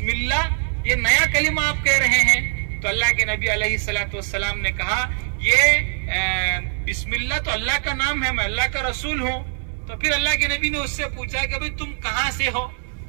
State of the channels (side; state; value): left; silent; 64 dB below the other